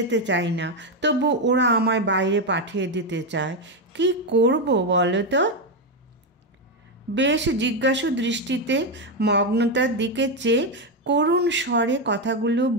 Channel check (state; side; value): normal; both; correlation 0.07